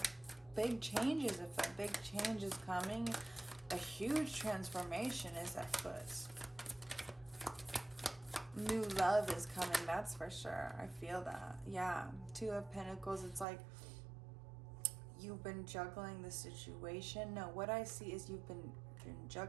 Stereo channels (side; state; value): left; drops out; at 13.5 s